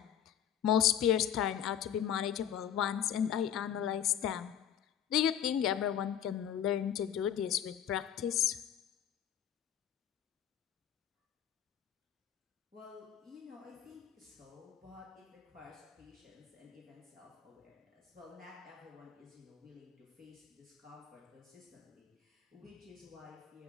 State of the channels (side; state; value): right; quieter; 9.7 dB